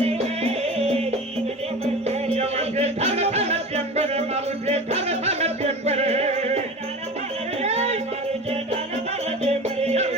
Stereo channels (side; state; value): both; normal; correlation 0.33